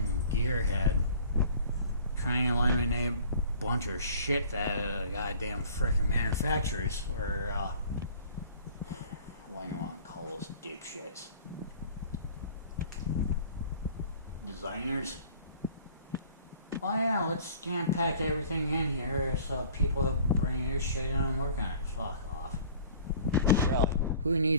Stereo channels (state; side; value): inverted; both; correlation -0.49